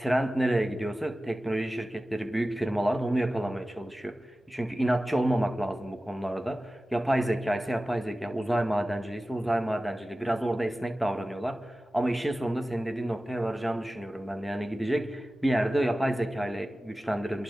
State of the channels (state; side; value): normal; both; correlation 0.96